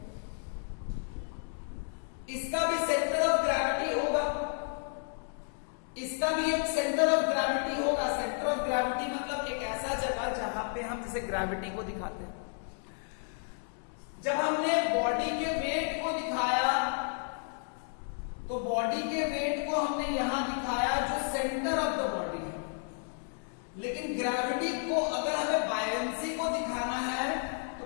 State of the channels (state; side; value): silent; right; 56 dB below the other